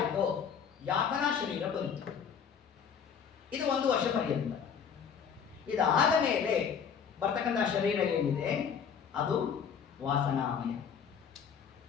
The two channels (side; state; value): right; quieter; 7.2 dB